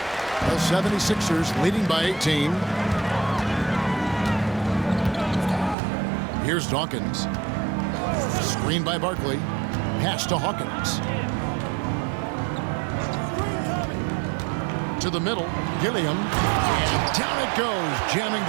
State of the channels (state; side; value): drops out; left; at 5.8 s